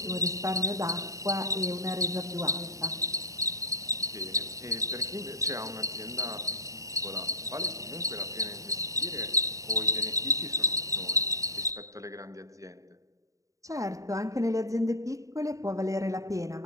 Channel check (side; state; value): left; late; 0.16 ms